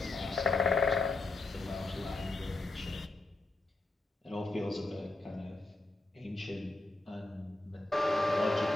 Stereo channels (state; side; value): quieter; right; 3.0 dB